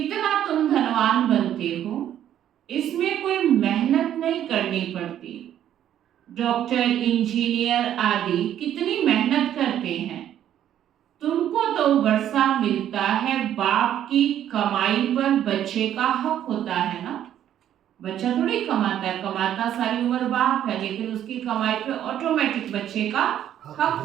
तुम धनवान बनते हो, इसमें कोई मेहनत नहीं करनी पड़ती। डॉक्टर, इंजीनियर आदि कितनी मेहनत करते हैं। तुमको तो वर्षा मिलता है, बाप की कमाई पर बच्चे का हक होता है ना। बच्चा थोड़ी कमाता है, कमाता सारी उम्र बाप है, लेकिन उसकी कमाई पे ऑटोमेटिक बच्चे का हक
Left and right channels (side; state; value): left; quieter; 10.8 dB